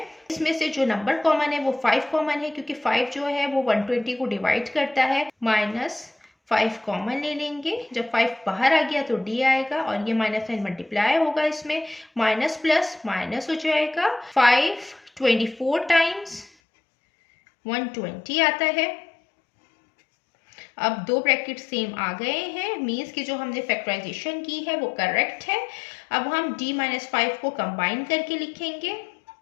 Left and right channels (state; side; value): drops out; right; at 16.5 s